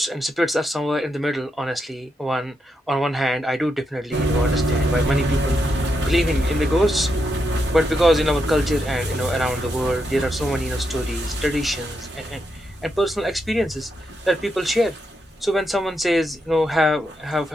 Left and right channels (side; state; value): both; normal; correlation 0.83